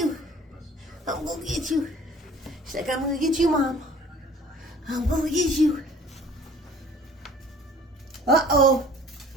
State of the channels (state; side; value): normal; both; correlation 0.50